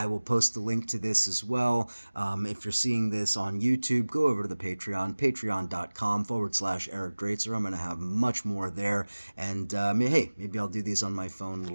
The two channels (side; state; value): both; inverted; correlation -1.00